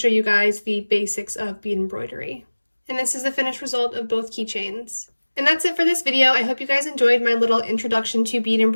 you guys the basics of bead embroidery. And this is the finished result of both keychains. And that's it for this video. I hope you guys enjoyed my little introduction to bead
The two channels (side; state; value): both; inverted; correlation -1.00